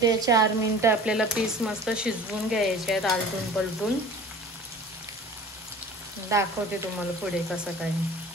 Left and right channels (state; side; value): normal; both; correlation 0.43